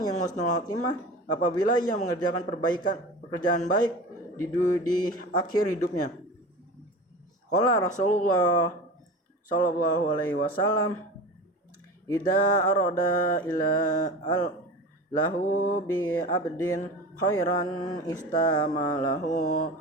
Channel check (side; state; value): both; normal; correlation 0.33